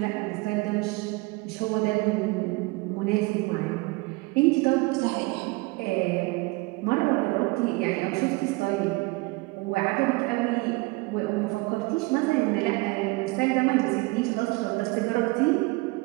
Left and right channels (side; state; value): left; quieter; 24.6 dB